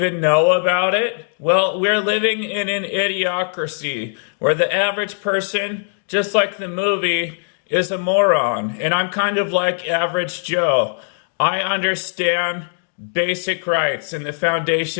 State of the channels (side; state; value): right; silent; digital silence